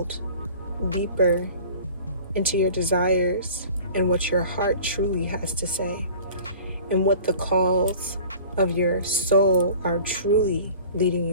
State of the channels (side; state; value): both; inverted; correlation -0.44